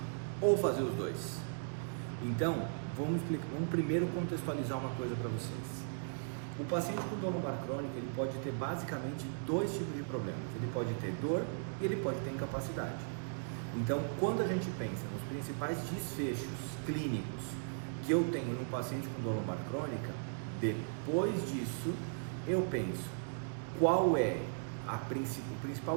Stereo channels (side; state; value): left; silent; digital silence